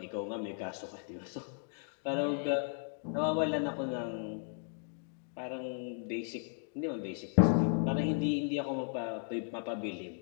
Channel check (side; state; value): right; silent; 54 dB below the other